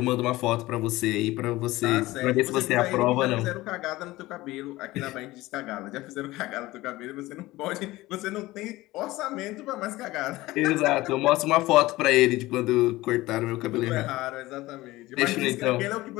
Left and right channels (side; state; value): right; quieter; 18.5 dB